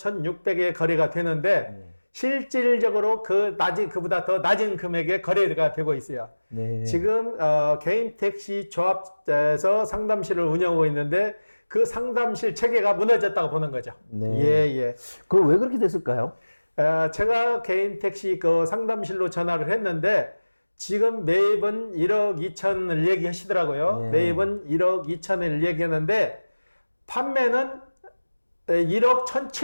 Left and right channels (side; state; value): both; inverted; correlation -1.00